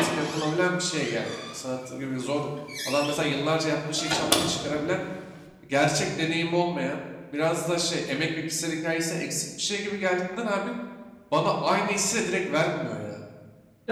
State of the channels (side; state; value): both; identical; correlation 1.00